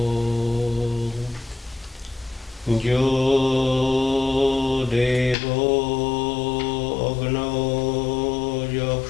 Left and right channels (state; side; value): drops out; right; at 5.4 s